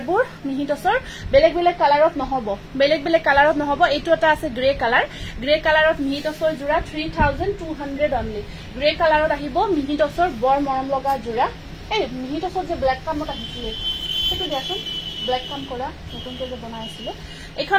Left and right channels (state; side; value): identical; both; correlation 1.00